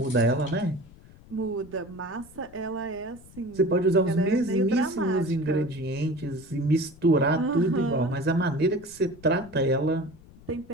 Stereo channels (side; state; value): left; noise; rumble, 22 dB below the sound